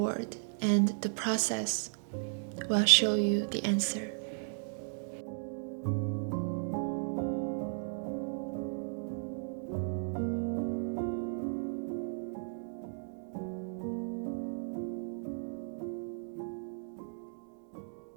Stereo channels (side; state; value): left; silent; digital silence